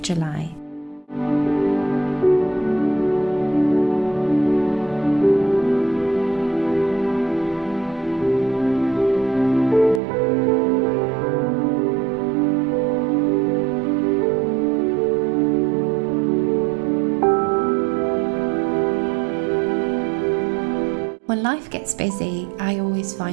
July. When life gets busy, I always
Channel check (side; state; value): left; drops out; at 10.0 s